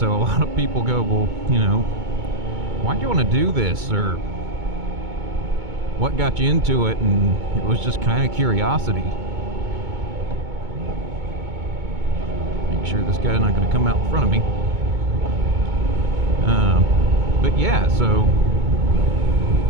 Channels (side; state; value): left; late; 2.2 ms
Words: a lot of people go, well, you know, why'd you want to do this, or what got you into it? And it was just kind of curiosity. Make sure this guy's not going to come out in front of me. But yeah, so